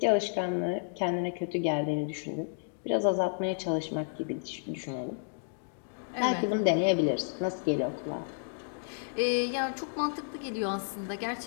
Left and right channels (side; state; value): right; silent; digital silence